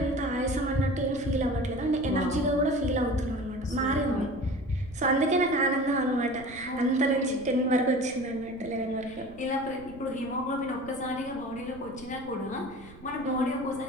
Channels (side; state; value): right; noise; rumble, 19 dB below the sound